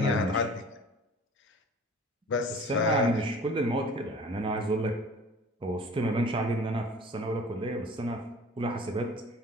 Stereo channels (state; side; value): normal; both; correlation 0.45